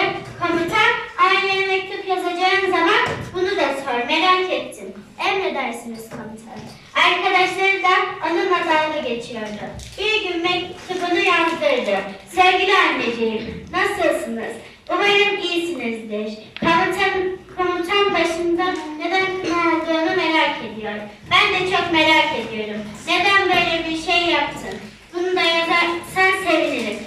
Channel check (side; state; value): both; identical; correlation 1.00